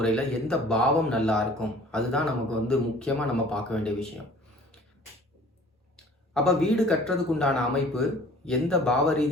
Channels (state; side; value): normal; both; correlation 0.50